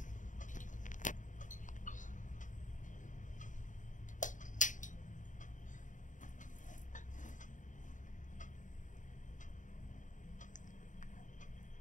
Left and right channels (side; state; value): right; late; 0.37 ms